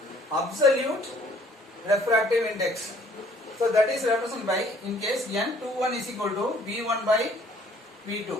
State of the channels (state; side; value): normal; both; correlation 0.59